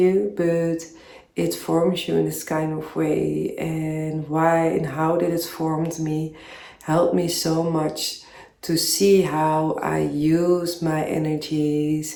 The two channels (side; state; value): both; identical; correlation 1.00